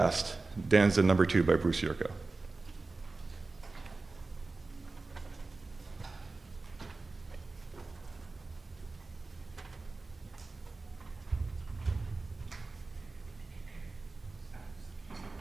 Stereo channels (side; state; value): left; quieter; 3.6 dB